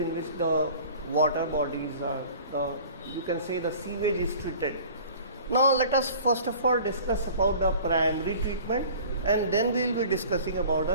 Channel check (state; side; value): inverted; both; correlation -0.45